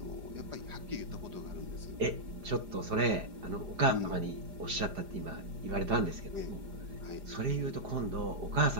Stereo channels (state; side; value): late; left; 4.9 ms